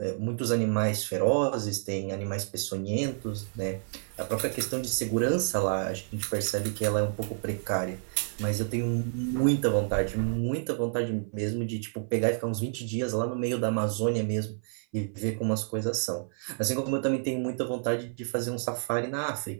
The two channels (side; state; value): left; silent; 56 dB below the other